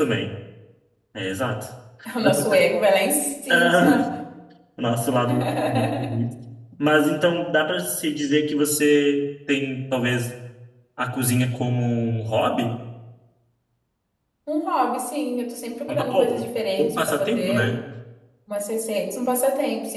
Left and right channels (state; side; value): identical; both; correlation 1.00